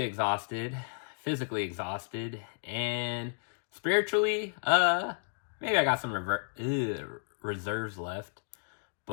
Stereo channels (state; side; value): silent; right; digital silence